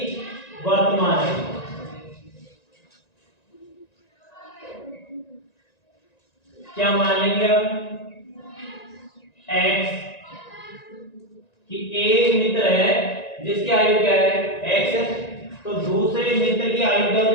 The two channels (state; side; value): late; right; 1.9 ms